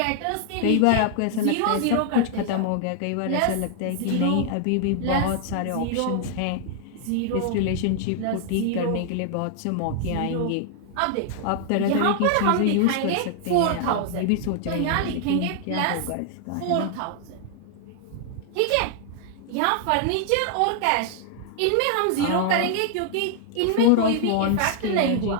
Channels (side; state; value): both; different; correlation 0.00